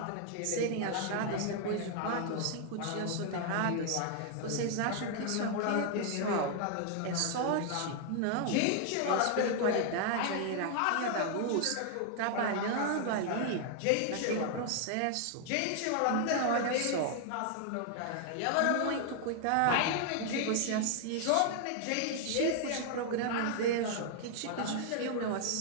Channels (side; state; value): both; different; correlation 0.00